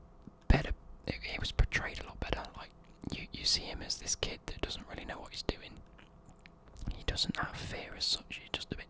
better. He was portrayed a lot better. Like you see him as this kid that doesn't really know what he's doing. He doesn't have fear as such. He's just a bit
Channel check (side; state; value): both; identical; correlation 1.00